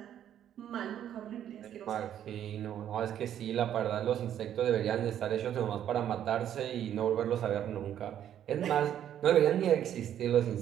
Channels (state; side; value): quieter; left; 10.4 dB